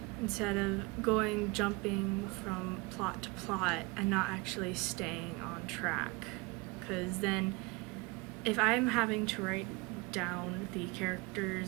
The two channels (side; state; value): left; quieter; 25.7 dB